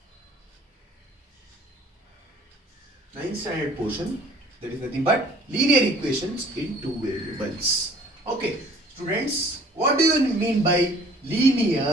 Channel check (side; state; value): both; normal; correlation 0.53